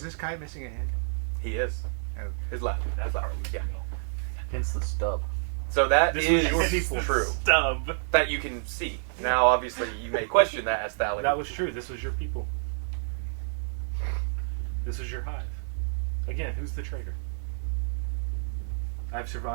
this guy missing a hand? he is Oh. his left. His left. Yeah. Hence the stub. So that This is was your people. true. Stub. That you can see. Now, obviously, you may question that as Phallic. That was true. This was your people. This was your hive. Again, who's the traitor? I've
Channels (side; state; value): left; silent; digital silence